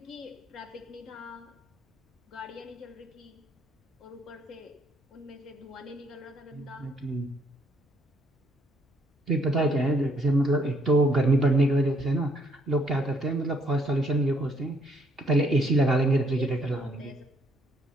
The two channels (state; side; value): normal; both; correlation 0.68